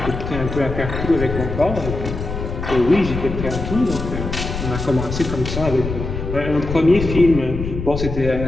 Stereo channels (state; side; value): noise; left; rumble, 6 dB below the sound